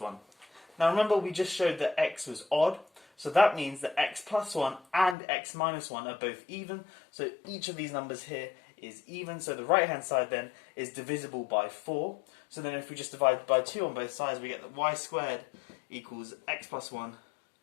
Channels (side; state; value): right; drops out; at 5.2 s